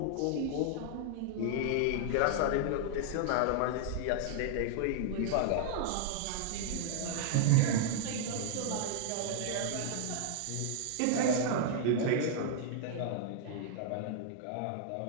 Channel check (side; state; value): both; different; correlation -0.01